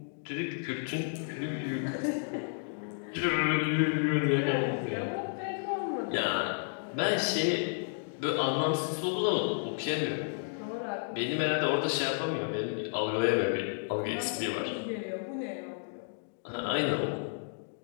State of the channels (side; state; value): right; silent; digital silence